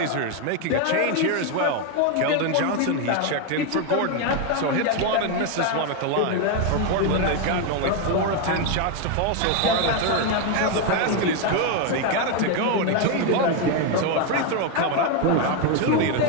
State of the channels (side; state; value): both; different; correlation 0.01